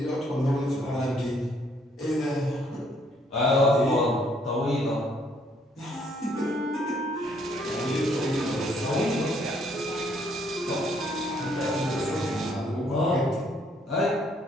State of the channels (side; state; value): both; normal; correlation 0.67